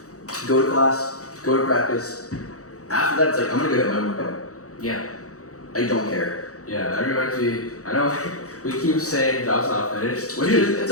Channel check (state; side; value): late; right; 0.65 ms